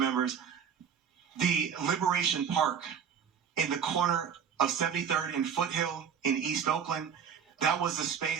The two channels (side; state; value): left; quieter; 7.5 dB